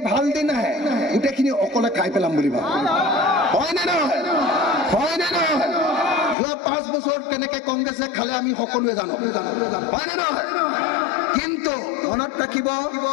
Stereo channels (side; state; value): right; drops out; at 6.4 s